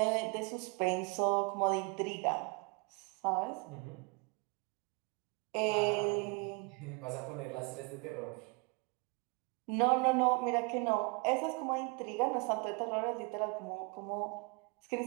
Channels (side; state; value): left; quieter; 32.3 dB